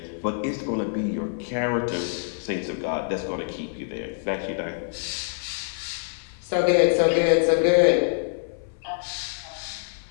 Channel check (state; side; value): silent; right; 56 dB below the other